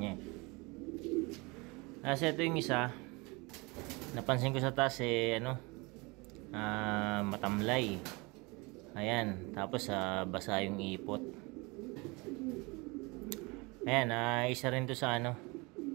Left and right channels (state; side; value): quieter; left; 26.5 dB